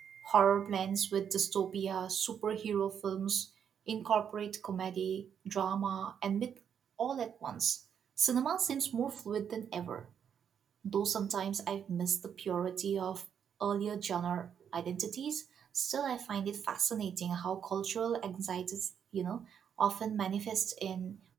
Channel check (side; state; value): left; quieter; 8.1 dB